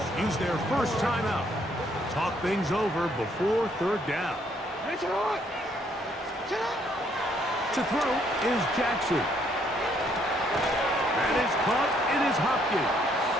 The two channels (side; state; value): both; normal; correlation 0.68